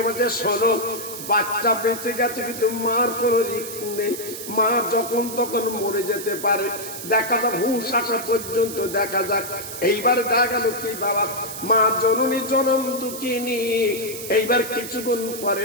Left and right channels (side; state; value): right; noise; hiss, 9 dB below the sound